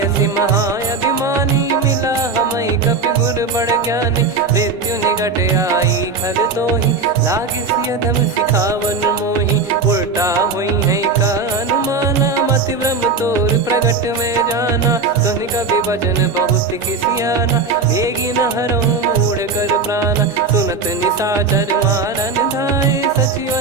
महाअभिमानी, मिला हमई कपि गुर बड़ ज्ञानी। मृत्यु निकट आई खल तोहि, लागिसि अधम सिखावन मोहि। उल्टा हुई है का अनुमाना, मति भ्रम तोर प्रगट में जाना। सुन कवि वचन बहुत खिसियाना, बेगी न हरहु मूढ़ कर प्राणा। सुनत निशाचर मारन धाये,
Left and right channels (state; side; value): quieter; left; 4.4 dB